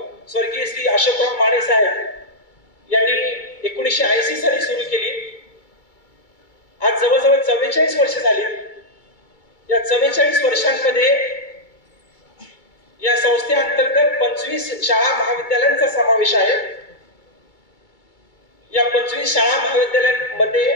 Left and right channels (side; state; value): right; late; 2.2 ms